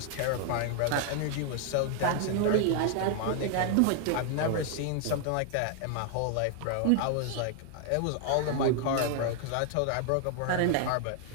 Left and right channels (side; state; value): both; different; correlation 0.00